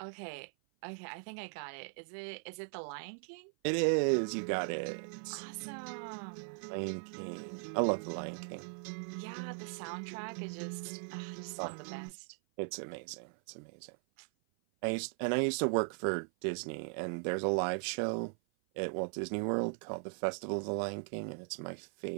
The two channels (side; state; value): left; silent; 52 dB below the other